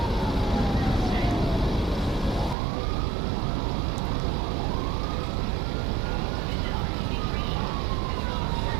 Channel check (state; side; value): drops out; left; at 2.6 s